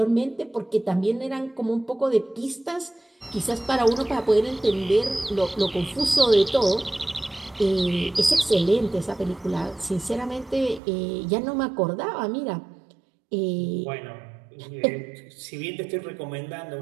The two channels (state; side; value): drops out; left; at 10.8 s